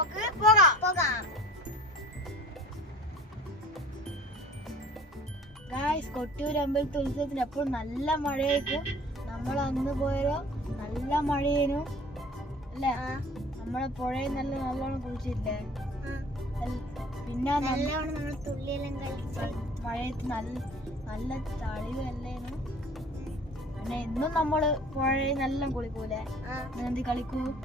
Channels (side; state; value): both; normal; correlation 0.47